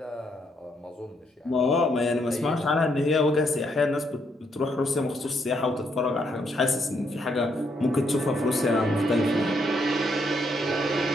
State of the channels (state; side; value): normal; both; correlation 0.74